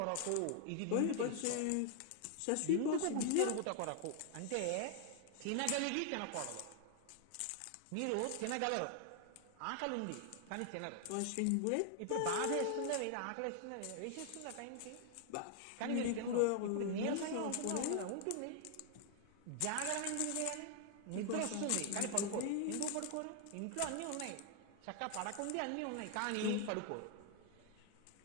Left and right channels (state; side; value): different; both; correlation 0.00